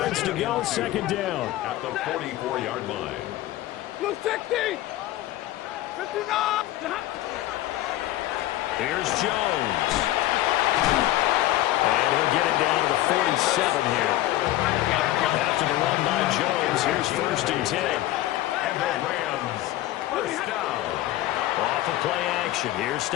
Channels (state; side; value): quieter; right; 15.2 dB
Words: to go, second down. At the 44-yard line. Blue 60! 59! Here's Jones. And he'll get it down to the 47 here. After the run by Jones, here's first and 10. And the Rams first down. Off of play action, here's